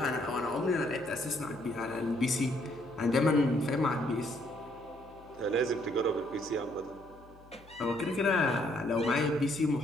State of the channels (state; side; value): noise; left; hum, 24 dB below the sound